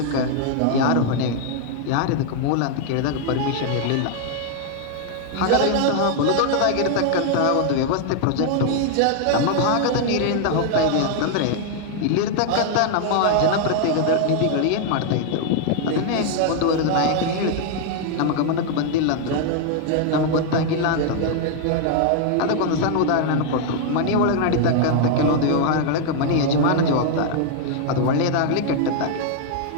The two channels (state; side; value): different; both; correlation 0.00